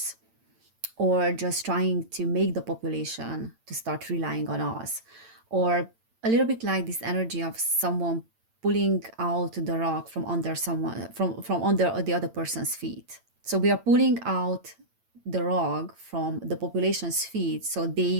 or just trying to make the population to start relying on us, or a little bit like this energy of someone pulling out the rock from under someone, from under the other person's feet. So we are pulling out the rock from the population's feet so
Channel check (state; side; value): late; left; 8.8 ms